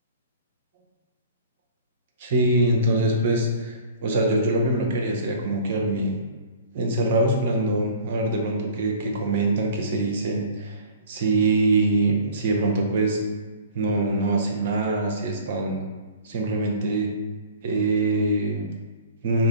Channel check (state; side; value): inverted; both; correlation -0.46